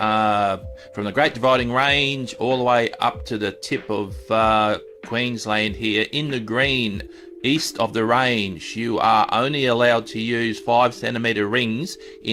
the Great Dividing Range all the way up to the tip of Queensland here in the green east of the range, you are only allowed to use 5 centimeter rings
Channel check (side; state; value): both; identical; correlation 1.00